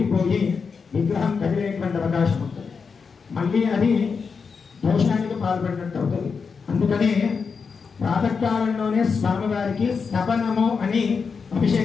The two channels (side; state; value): right; quieter; 5.5 dB